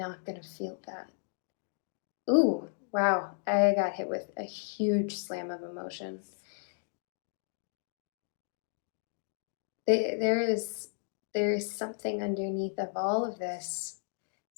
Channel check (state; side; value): silent; right; digital silence